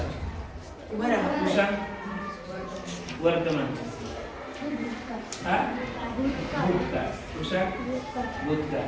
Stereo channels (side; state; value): both; identical; correlation 1.00